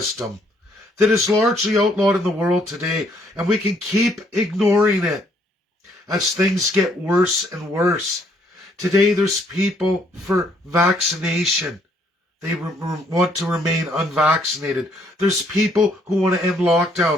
that is largely outlawed in the world today, and we can keep ignoring it as things get worse and worse. Today there's people for vaccination. They want to remain unvaccinated. There's people who want to end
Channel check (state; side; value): normal; both; correlation 0.67